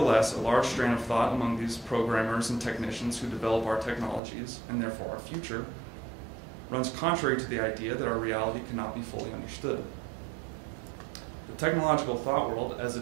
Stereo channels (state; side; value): drops out; left; at 4.2 s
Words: a large strain of thought among these programmers and technicians who develop our technologies, and therefore our future, runs contrary to the idea that our reality cannot be fully understood. The technological thought world, as